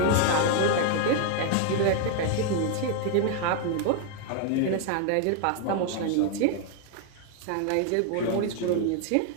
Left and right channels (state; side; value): different; both; correlation 0.00